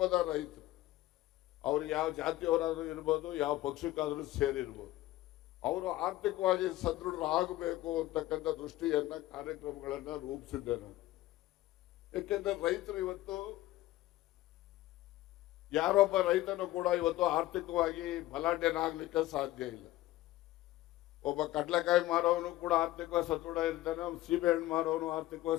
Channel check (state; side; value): quieter; right; 16.1 dB